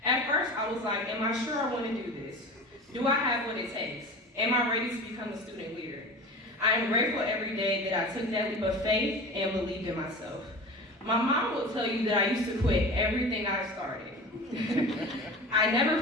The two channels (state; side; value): normal; both; correlation 0.34